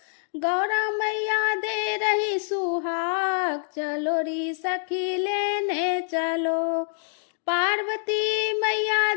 गौरा मैया दे रही सुहाग, चलो री सखी लेने चलो। पार्वती मैया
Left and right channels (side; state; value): right; silent; digital silence